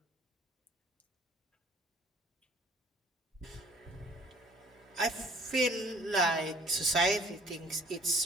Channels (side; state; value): both; normal; correlation 0.55